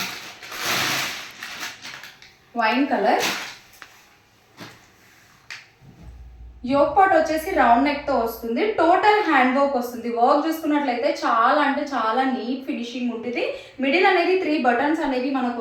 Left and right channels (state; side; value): identical; both; correlation 1.00